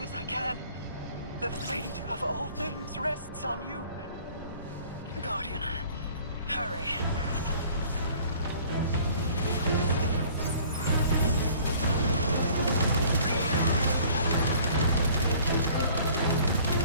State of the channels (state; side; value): inverted; both; correlation -0.52